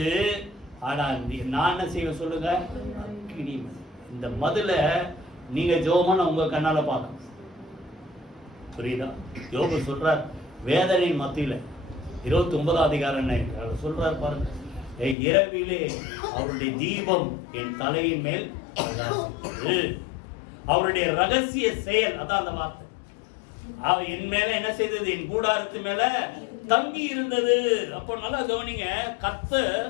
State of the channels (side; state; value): right; drops out; at 15.2 s